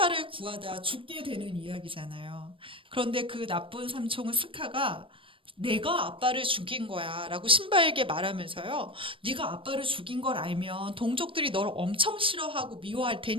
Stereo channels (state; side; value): late; left; 0.25 ms